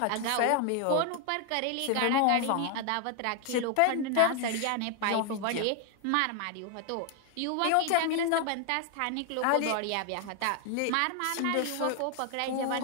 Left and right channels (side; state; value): both; different; correlation 0.00